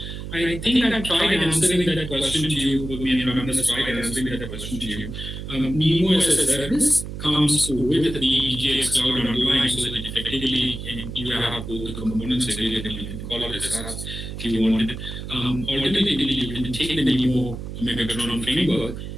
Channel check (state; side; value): noise; right; hum, 8 dB below the sound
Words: I think I tried answering that question to you, but me and Raman has tried answering that question to you. Nemo as a service comes with the DGX cloud underlying, so that effectively you have both the components available. You can call it as SaaS if you wanted. Alternatively, you can take the Nemo Megatron framework